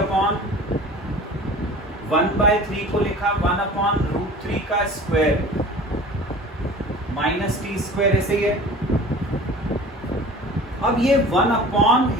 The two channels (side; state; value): both; normal; correlation 0.41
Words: 1/3 को लिखा 1/√3 का स्क्वायर माइनस टी स्क्वायर ऐसे ही है। अब ये